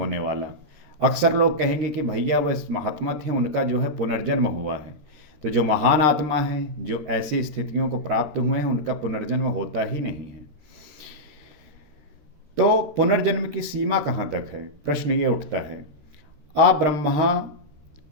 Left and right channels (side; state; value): left; late; 13 ms